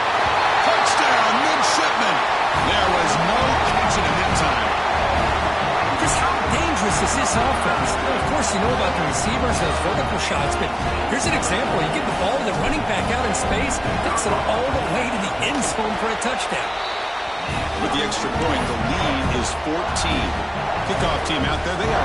Touchdown, midshipman. There was no catching him in time. Just how dangerous is this offense? Well, of course, you know about the receivers, those vertical shots, but here's an example. You get the ball to the running back out in space, takes it all the way to the end zone for a touchdown. With the extra point, the lead is 14. Kickoff team out there, they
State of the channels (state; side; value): identical; both; correlation 1.00